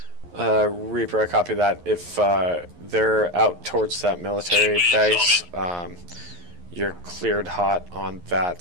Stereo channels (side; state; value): left; late; 11 ms